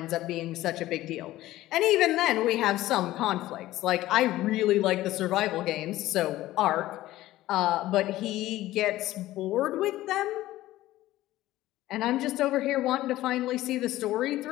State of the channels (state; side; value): quieter; right; 15.8 dB